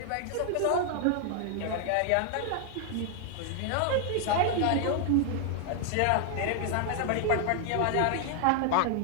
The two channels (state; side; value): different; both; correlation 0.00